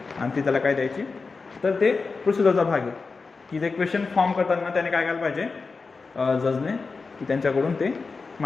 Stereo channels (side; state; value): right; quieter; 4.4 dB